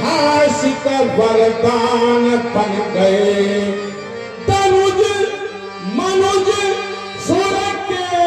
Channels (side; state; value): both; identical; correlation 1.00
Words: वरदान बन गए। तनुज मनुज सुर के